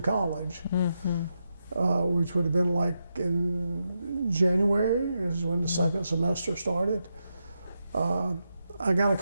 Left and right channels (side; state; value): both; inverted; correlation -0.85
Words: college, which would have been like in January is when the second semester started. I got a